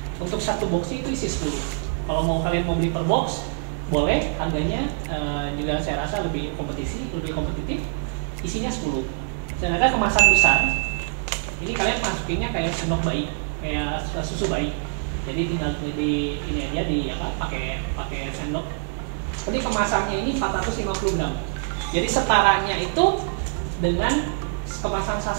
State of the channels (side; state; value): left; silent; digital silence